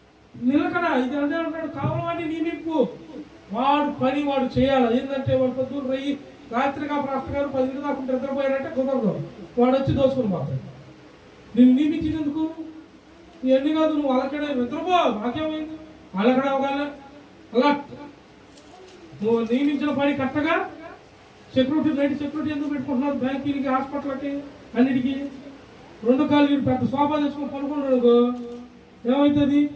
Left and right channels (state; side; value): identical; both; correlation 1.00